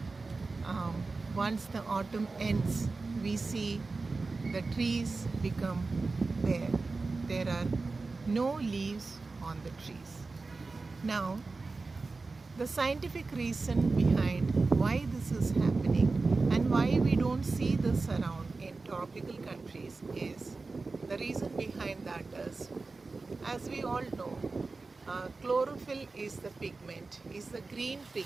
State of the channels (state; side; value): quieter; left; 3.8 dB